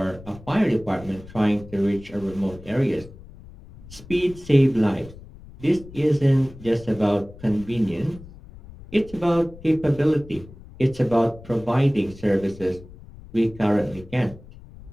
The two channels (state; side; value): noise; left; rumble, 18 dB below the sound